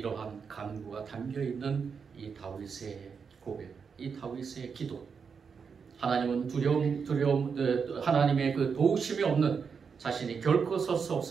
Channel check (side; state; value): left; quieter; 6.0 dB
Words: 간구가 담겨있는 이 다윗의 고백, 이 다윗의 기도. 하나님은 하나님의 그 도우심이 없는 자신이 결코 설 수